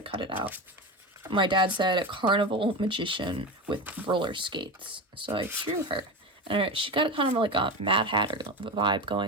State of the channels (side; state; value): both; normal; correlation 0.22